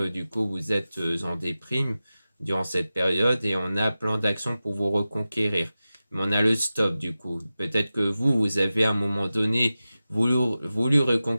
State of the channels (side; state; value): both; inverted; correlation -0.95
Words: du coup vous êtes en déprime durant cette période et on a plein d'actions pour vous reconquérir. Mais on a le stop du coup. Peut-être que vous avez à un moment donné voulu